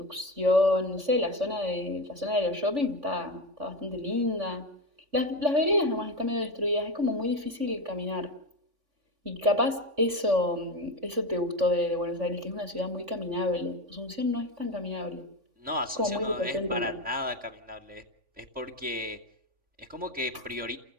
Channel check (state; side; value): late; left; 3.5 ms